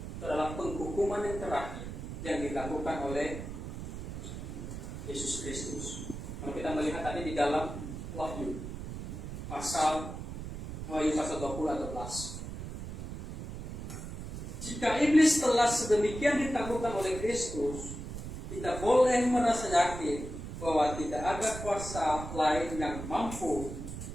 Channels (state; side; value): noise; right; rumble, 8 dB below the sound